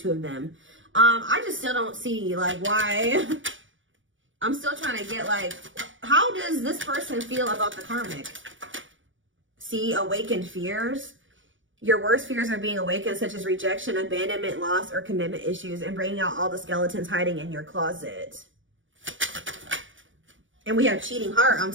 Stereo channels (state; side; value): late; left; 0.56 ms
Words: of them. I just still don't see like why. I'm still trying to get like, how does this person feel about the karmic? See, awakened fears. Your worst fears are being awakened, such as rejection, abandonment, loss, or commitment issues, and bringing out all the skeletons hiding in your closet. And we have cheating heart. I'm